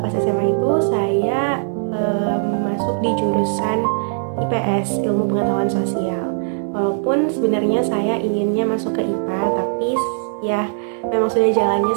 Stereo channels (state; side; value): silent; left; 66 dB below the other